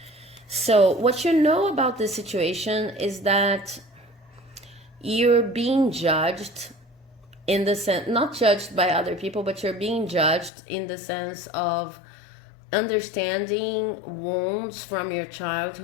So what you know about this situation is that you're being judged in the sense, not judged by other people, but you're being judged in the sense of understanding wounds from your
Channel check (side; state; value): right; drops out; at 10.5 s